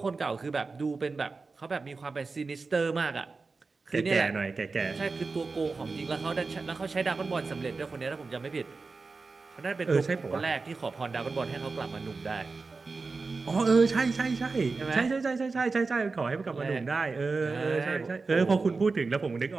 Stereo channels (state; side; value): quieter; left; 4.1 dB